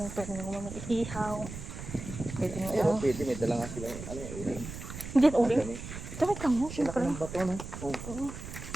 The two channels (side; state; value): right; noise; rumble, 10 dB below the sound